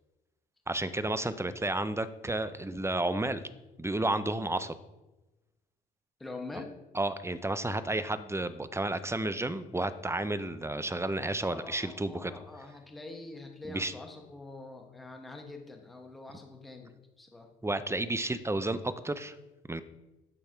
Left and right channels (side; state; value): both; normal; correlation 0.58